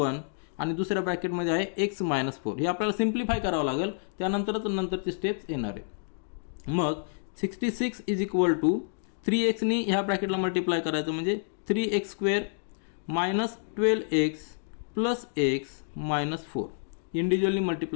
आणि दुसऱ्या ब्रॅकेटमध्ये आहे x - 4. हे आपल्याला सिम्प्लिफाय करावं लागेल, त्यानंतरच नंतरचे स्टेप्स येणार आहे. मग 66 = 3x नी ह्या ब्रॅकेटला मल्टिप्लाय करायचं म्हणजे 3x² - 12x + x - 4 individually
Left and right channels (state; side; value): silent; right; digital silence